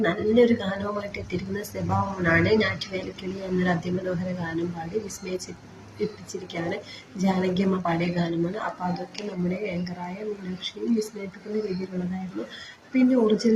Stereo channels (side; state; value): both; identical; correlation 1.00